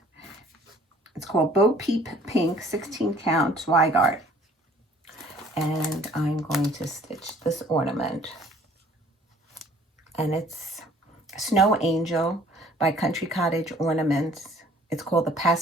It's called Bo Peep Pink 16 count Zweigart. And I'm going to stitch this ornament. And it's Snow Angel by Country Cottage Ornaments. It's called the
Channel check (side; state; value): both; normal; correlation 0.54